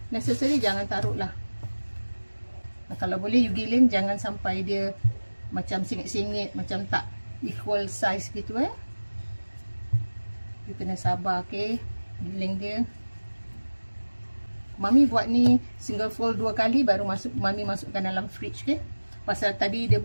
necessary jangan taruh lah. Kalau boleh you giling jangan sampai dia macam singit-singit, macam tak equal size gitu You kena sabar giling dia. Mami buat ni single fold 2 kali baru Mami masukkan dalam fridge Pasal tadi dia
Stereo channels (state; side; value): inverted; both; correlation -1.00